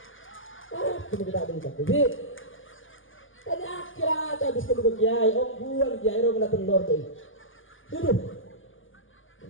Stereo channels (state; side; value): late; right; 0.58 ms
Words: Kita tidak ada ikan. Jadi tanya akhirat habis kedua kiai, buan kiai romule telur tu. Duduk.